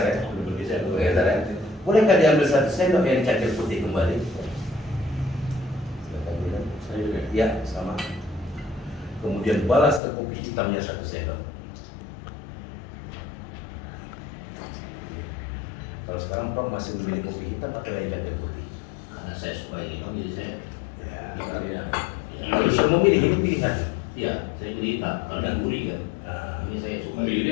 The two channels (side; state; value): right; drops out; at 10.0 s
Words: ya. Udah bergeser. Bergeser ya. Bolehkah diambil 1 sendok yang cangkir putih kembali? Silakan minum. Saya juga. Ya, sama. Kemudian balas ke kopi hitamnya 1 sendok. Kalau sekarang Prof masih memilih kopi hitam atau yang cangkir putih? Karena saya suka yang hitam, jadi saya Ya. Iya. Kalau sudah memilih ini pilihan. iya, saya pilih hitam. Kalau yang gurih kan, Nah, ini saya suka. Memilih